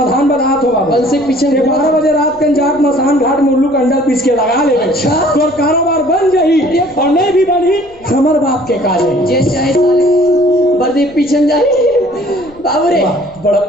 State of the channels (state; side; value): noise; left; rumble, 26 dB below the sound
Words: बनात हो बाबू। बंसी पीछे 12 बजे रात के जात मसान घाट मुर्लू का अंडा पीस के लगा ले। अच्छा तोर कारोबार बन जाही और नहीं भी बनी हमर बाप के काजे। जे चाहे साले वर्दी पीछे जाए। बाबू रे बड़ा